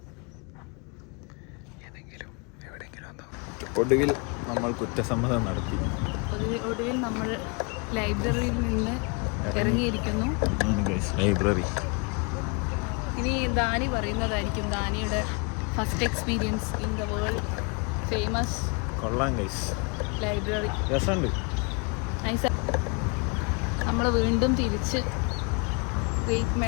ഏതെങ്കിലും എവിടെയെങ്കിലും ഒന്നോ. ഒടുവിൽ നമ്മൾ കുറ്റസമ്മതം നടത്തി. ഒടുവിൽ നമ്മൾ ലൈബ്രറിയിൽ നിന്ന് ഇറങ്ങിയിരിക്കുന്നു. ലൈബ്രറി. ഇനി ദാനി പറയുന്നതായിരിക്കും ദാനിയുടെ first experience in the world famous. കൊള്ളാം ഗൈസ്, ലൈബ്രറി രസമുണ്ട്. നമ്മൾ വീണ്ടും തിരിച്ച് ഗ്രേറ്റ്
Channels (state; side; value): quieter; right; 32.8 dB